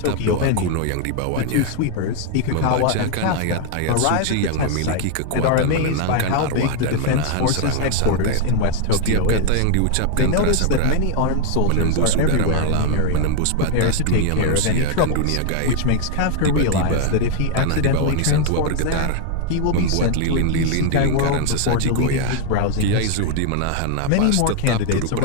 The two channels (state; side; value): different; both; correlation 0.00